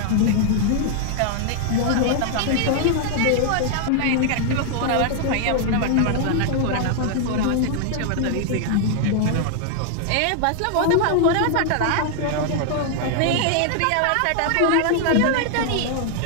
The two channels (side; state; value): both; different; correlation 0.00